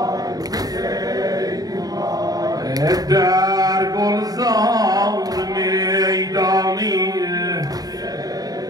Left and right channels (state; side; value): late; left; 0.18 ms